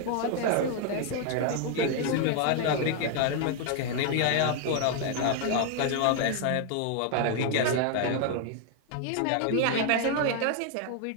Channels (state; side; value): different; both; correlation 0.00